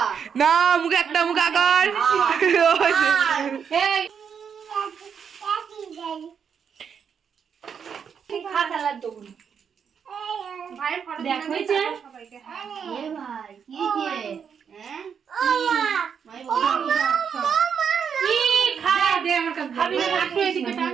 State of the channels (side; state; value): left; quieter; 7.1 dB